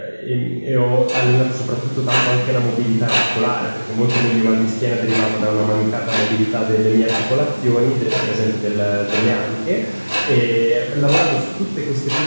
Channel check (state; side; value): inverted; both; correlation -1.00